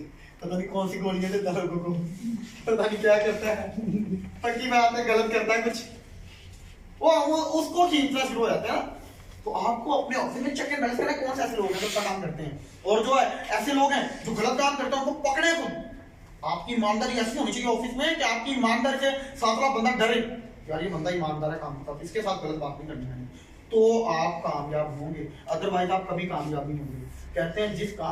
पता नहीं कौन सी गोलियां देता है लोगों को, पता नहीं क्या करता है, पक्की बात है गलत करता है कुछ, वो उसको खींचना शुरू हो जाता है ना। तो आपको अपने ऑफिस में चेक एंड बैलेंस करना है, कौन से ऐसे लोग हैं जो अच्छा काम करते हैं, और जो है ऐसे लोग हैं जो गलत काम करते हैं, उनको पकड़े तुम। आपकी ईमानदारी ऐसी होनी चाहिए ऑफिस में कि आपकी ईमानदारी से साथ साथ बंदा डरे, यार ये बंदा ईमानदार है, काम करता है, इसके साथ गलत बात नहीं करनी है, तो आप कामयाब होंगे, अदरवाइज आप कभी कामयाब नहीं होंगे। कहते हैं जिस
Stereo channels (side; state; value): both; identical; correlation 1.00